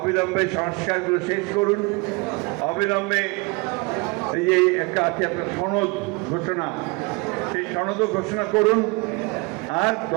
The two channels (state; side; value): quieter; left; 27.7 dB